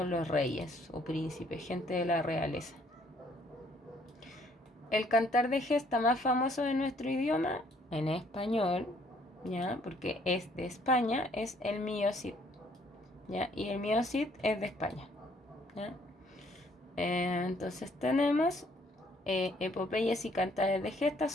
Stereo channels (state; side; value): normal; both; correlation 0.64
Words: los reyes o príncipes, gente de la realeza. El cantar de gesta más famoso de nuestro idioma, en español, ¿ya? Porque es de España, es el Mío Cid, ¿ya? Y el Mío Cid es de España, ¿ya? Entonces tenemos epopeyas y cantares de gesta